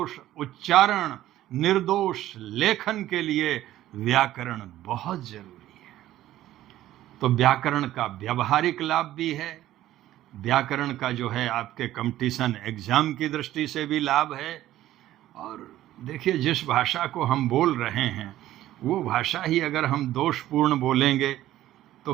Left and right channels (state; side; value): quieter; left; 13.9 dB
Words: उच्चारण, निर्दोष लेखन के लिए व्याकरण बहुत जरूरी है। तो व्याकरण का व्यावहारिक लाभ भी है, व्याकरण का जो है आपके कंपटीशन एग्जाम की दृष्टि से भी लाभ है। और देखिए, जिस भाषा को हम बोल रहे हैं वो भाषा ही अगर हम दोषपूर्ण बोलेंगे